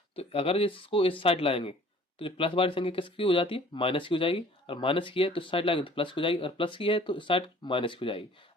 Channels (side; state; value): both; normal; correlation 0.52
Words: तो अगर इसको इस साइड लाएंगे तो जो प्लस वाली संख्या किसकी हो जाती है, माइनस की हो जाएगी। और माइनस की है तो इस साइड लाएंगे तो प्लस की हो जाएगी, और प्लस की है तो इस साइड माइनस की हो जाएगी।